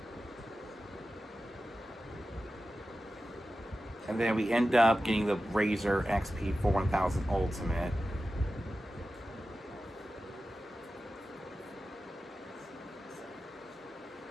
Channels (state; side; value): normal; both; correlation 0.93